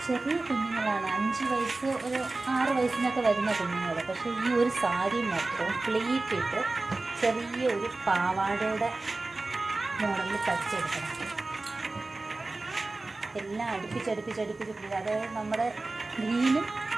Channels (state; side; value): quieter; left; 3.2 dB